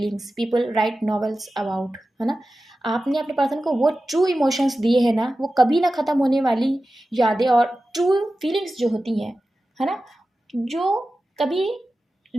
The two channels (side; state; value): both; normal; correlation 0.94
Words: people write novels about, है ना। आपने अपने पर्सन को वो ट्रू इमोशंस दिए हैं ना, वो कभी ना ख़त्म होने वाली यादें और ट्रू फीलिंग्स जो होती हैं, है ना, जो कभी